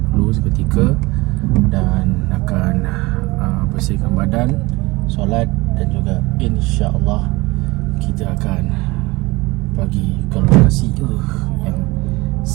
dulu seketika dan akan bersihkan badan, solat dan juga insya-Allah kita akan pergi ke lokasi yang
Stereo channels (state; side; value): quieter; left; 22.4 dB